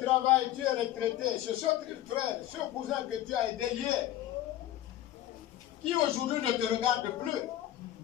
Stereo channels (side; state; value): right; quieter; 13.2 dB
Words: travail, tu es retraité. C'est ce frère, ce cousin que tu as aidé hier, qui aujourd'hui ne te regarde plus.